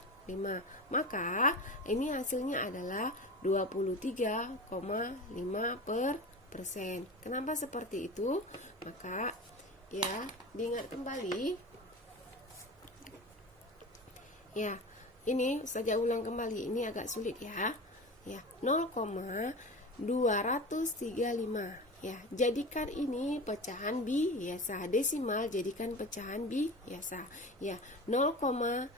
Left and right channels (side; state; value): both; normal; correlation 0.31